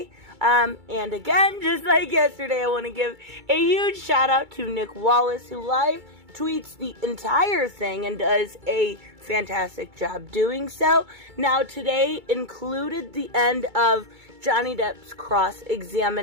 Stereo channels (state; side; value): late; left; 2.3 ms